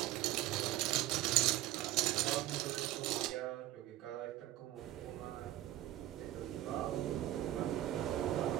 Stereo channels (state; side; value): quieter; left; 14.8 dB